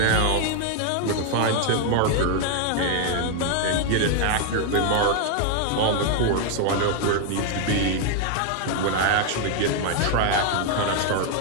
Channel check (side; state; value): both; different; correlation 0.00